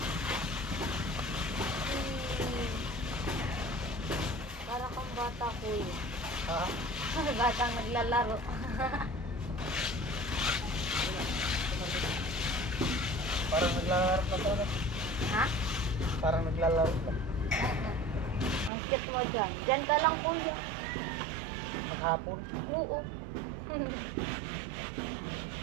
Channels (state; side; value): drops out; left; at 18.7 s